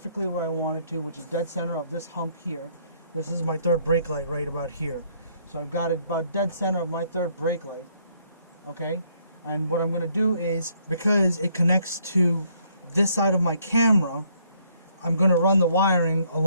where I wanted to, which is dead center of this hump here. This is my third brake light right about here. So I've got it about dead center of my third brake light. Okay, and what I'm going to do is, because it connects to this side of my camera, I'm going to run the wiring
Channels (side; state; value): both; inverted; correlation -0.68